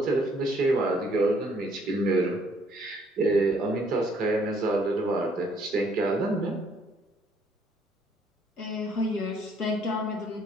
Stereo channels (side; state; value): both; normal; correlation 0.65